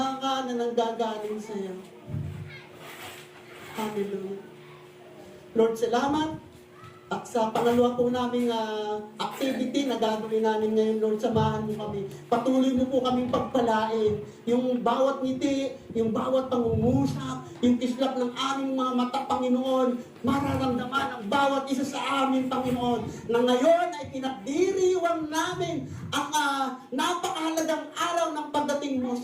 na nanggagaling sa iyo. Hallelujah. Lord, salamat. At sa pangalawa po naming activity na gagawin namin ngayon, Lord, samahan mo kami. Patuloy mo po kaming pagpalain. Yung bawat ngiti, yung bawat pangungusap, yung kislap ng aming mga mata, Panginoon, mararamdaman ang bawat isa sa amin, Panginoon, na ngayon ay pinagdiriwang namin ang napakahalagang araw ng pagdating mo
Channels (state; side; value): identical; both; correlation 1.00